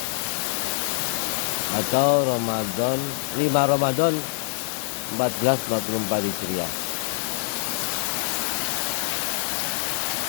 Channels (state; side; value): silent; right; 62 dB below the other